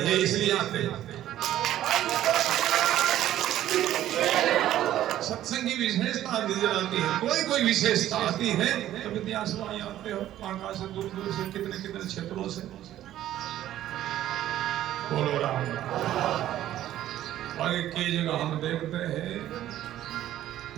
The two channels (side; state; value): left; quieter; 12.8 dB